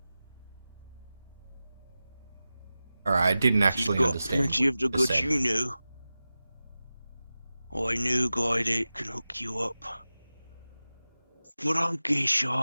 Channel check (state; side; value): inverted; both; correlation -0.96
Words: Alright, I didn't actually You've got understand plenty what of the you goods said. you know. I know a guy that can hook you up. But I guess